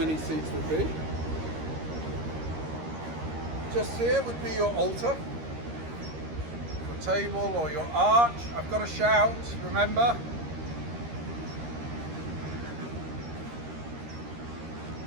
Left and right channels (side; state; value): left; late; 13 ms